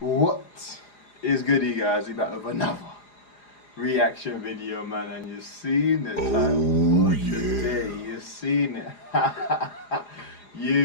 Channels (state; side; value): late; right; 4.9 ms